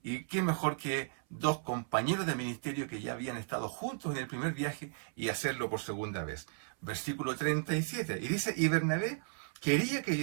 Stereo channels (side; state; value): left; silent; 54 dB below the other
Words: Y qué mejor que dos compañeros de ministerio que ya habían estado juntos en el primer viaje y hacerlo por segunda vez. Versículo 37. Y dice, y Bernabé quería que